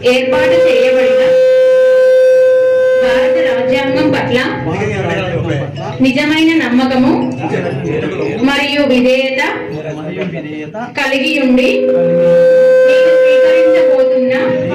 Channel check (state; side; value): identical; both; correlation 1.00